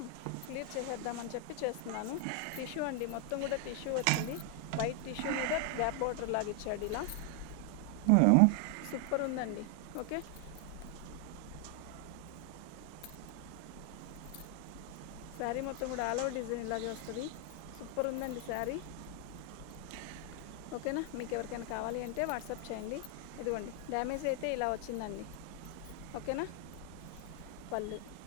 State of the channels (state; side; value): different; both; correlation 0.00